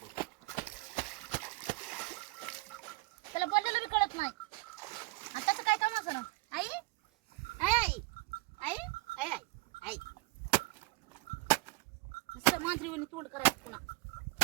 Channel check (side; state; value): left; quieter; 23.2 dB